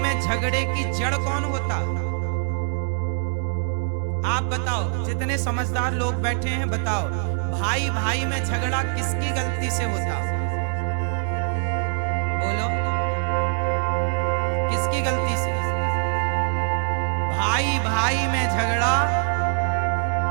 झगड़े की जड़ कौन होता? आप बताओ, जितने समझदार लोग बैठे हैं बताओ, भाई भाई में झगड़ा किसकी गलती से होता? बोलो, किसकी गलती से? भाई भाई में झगड़ा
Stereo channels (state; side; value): silent; left; 63 dB below the other